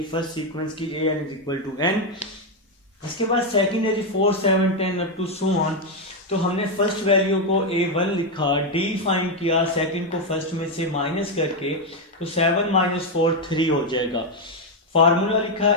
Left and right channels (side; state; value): both; normal; correlation 0.04